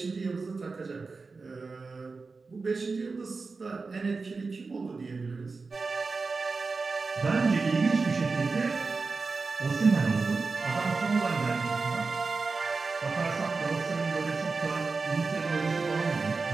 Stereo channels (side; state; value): left; quieter; 4.2 dB